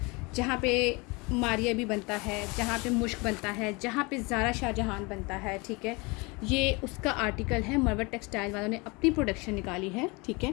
जहाँ पे मारिया भी बनता है, जहाँ पे मुश्क बनता है, जहाँ पे ज़ारा शाहजहान बनता है, ठीक है। ये उसका आर्टिकल है, मरबट टेक्सटाइल वालों ने अपनी प्रोडक्शन निकाली है, ठीक है।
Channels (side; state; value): right; quieter; 27.1 dB